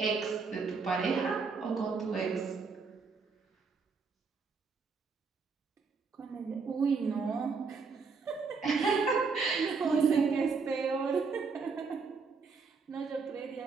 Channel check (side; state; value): left; quieter; 4.9 dB